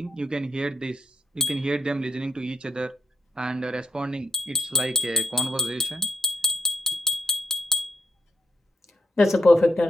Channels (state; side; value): normal; both; correlation 0.80